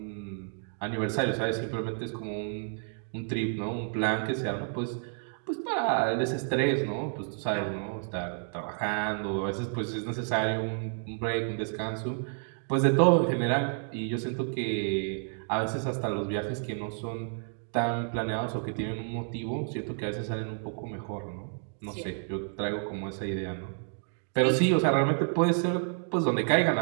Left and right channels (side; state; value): left; silent; 58 dB below the other